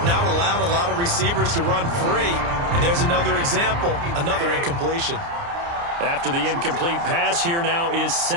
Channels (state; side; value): late; left; 29 ms